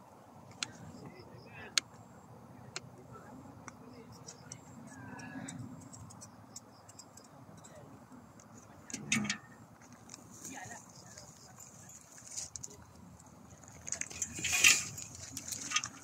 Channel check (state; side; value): identical; both; correlation 1.00